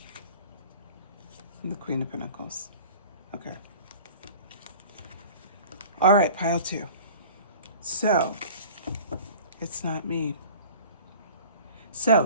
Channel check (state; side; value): inverted; both; correlation -0.42